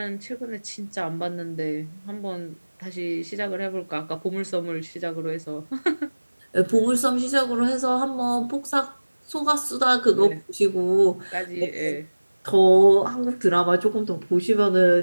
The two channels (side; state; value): both; inverted; correlation -1.00